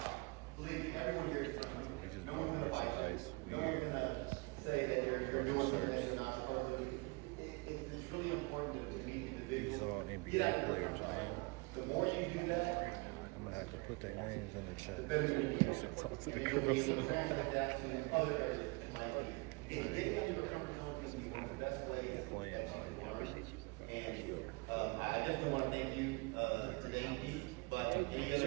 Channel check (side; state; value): left; quieter; 28.8 dB